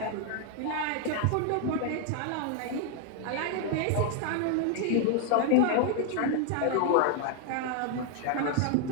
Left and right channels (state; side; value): different; both; correlation 0.00